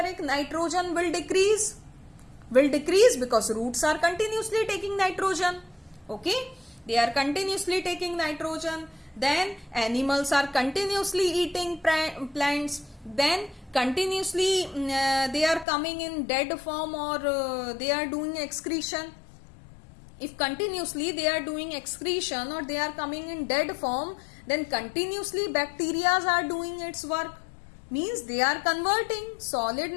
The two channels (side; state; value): right; drops out; at 15.7 s